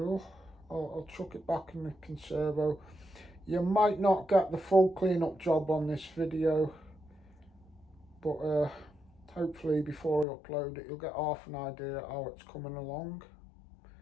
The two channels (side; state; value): right; drops out; at 10.2 s